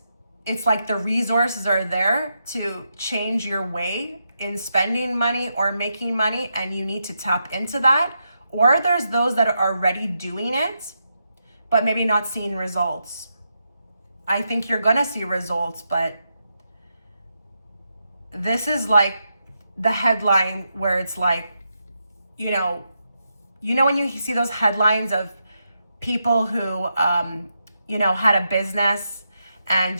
it's like the resources are there to change your way in spending money or making money, and you need to tap into that. Or there's those that are already doing it, but maybe not seeing results. I think you're gonna see results, but this is like the headline where it's like, you know when you see those headlines of people who, had a business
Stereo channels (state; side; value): inverted; both; correlation -0.84